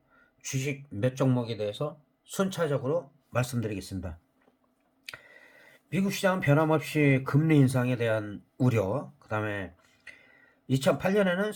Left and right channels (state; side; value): identical; both; correlation 1.00